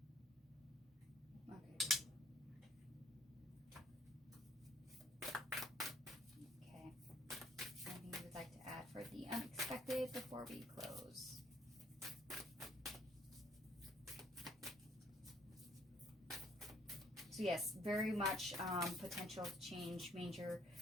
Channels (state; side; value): normal; both; correlation 0.61